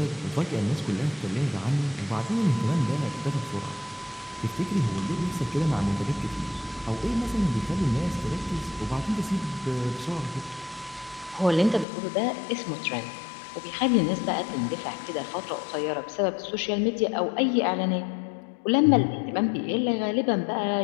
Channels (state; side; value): drops out; right; at 11.9 s